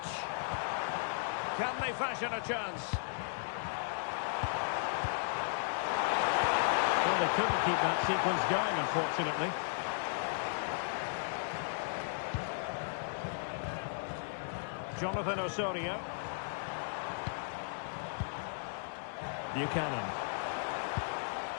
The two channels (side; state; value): right; silent; digital silence